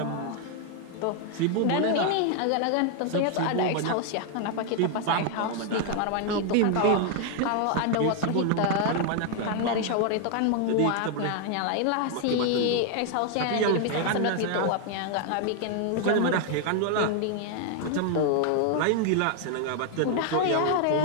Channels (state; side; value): different; both; correlation 0.00